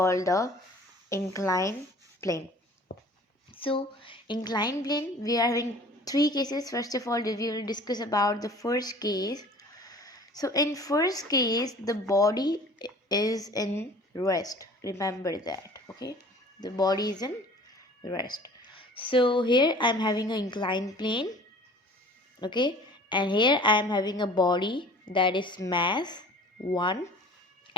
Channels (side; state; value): both; normal; correlation 0.46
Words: the inclined plane. So inclined plane, we are having three cases. First of all, we will discuss about the first case. So in first case, the body is in rest. Remember that. Okay, the body is in rest. So here I am having an inclined plane. Okay, and here I am having a body that is mass 1,